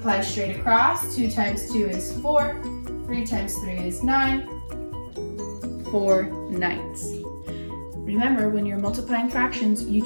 straight across, 2 times 2 is 4, 3 times 3 is 9, 4 ninths. Remember, when you're multiplying fractions, you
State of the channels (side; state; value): both; inverted; correlation -1.00